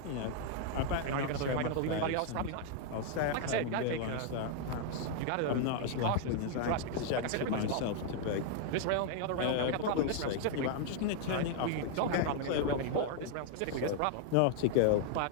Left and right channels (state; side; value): different; both; correlation -0.01